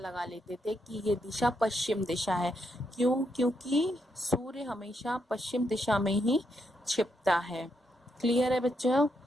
लेते थे कि ये दिशा पश्चिम दिशा है। क्यों? क्योंकि सूर्य हमेशा पश्चिम दिशा में ही छिपता है। क्लियर है बच्चों?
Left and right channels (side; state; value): both; normal; correlation 0.80